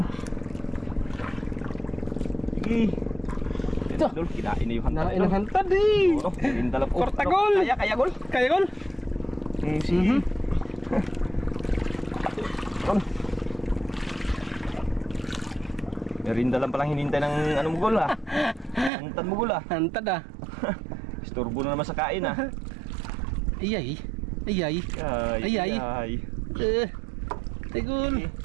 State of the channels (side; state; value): left; drops out; at 18.9 s